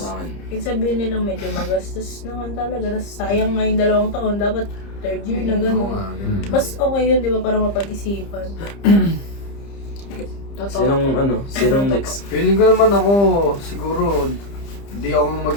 akin. Kahit sabihin nilang medyo magastos naman talaga. Tapos sayang nga yung 2 taon. Dapat 3rd year na Oo gano'n. nga, ganun. Mas okay yun, di ba? Para mapag-isipan. Sinong next? Feeling ko naman ako, siguro, di ako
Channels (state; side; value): late; right; 30 ms